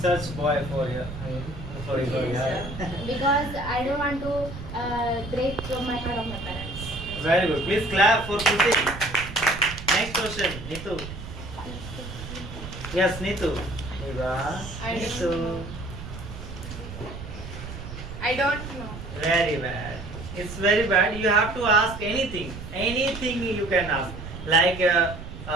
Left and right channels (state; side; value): noise; right; rumble, 11 dB below the sound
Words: boy for you. Sorry, sorry. Because I don't want to break my heart of my parents. Very good. Please clap for Kruti. Next question, Nitu. Yes, Nitu. Eva. I don't Nitu. I don't know. Very bad. It's very bad. You have to ask anything. Anything you can ask. Like